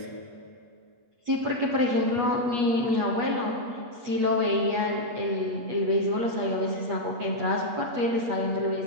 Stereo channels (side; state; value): left; late; 8.3 ms